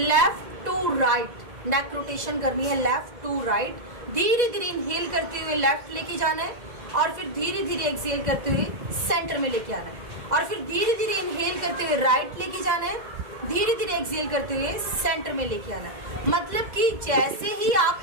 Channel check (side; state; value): left; late; 2.0 ms